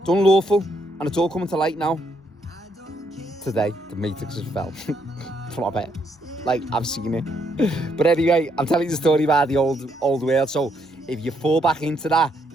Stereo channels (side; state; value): both; normal; correlation 0.74